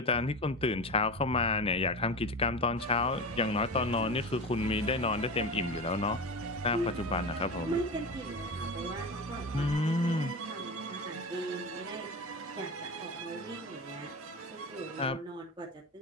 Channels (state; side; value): normal; both; correlation 0.26